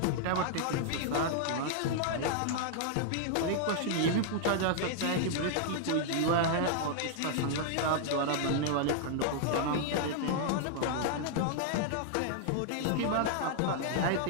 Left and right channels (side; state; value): both; different; correlation -0.01